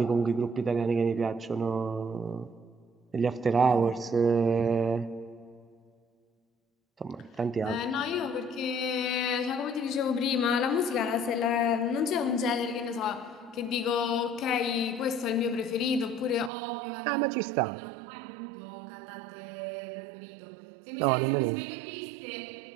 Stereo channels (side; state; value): left; drops out; at 16.5 s